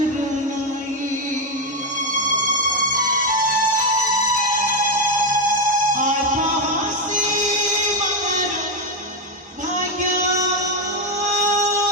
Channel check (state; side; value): normal; both; correlation 0.07